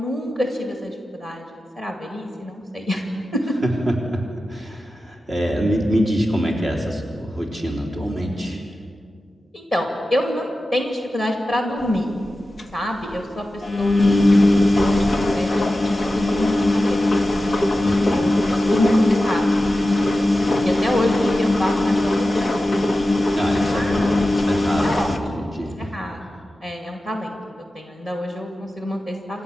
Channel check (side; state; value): both; normal; correlation 0.94